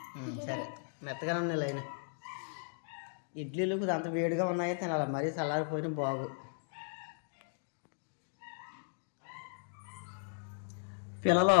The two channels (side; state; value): right; silent; digital silence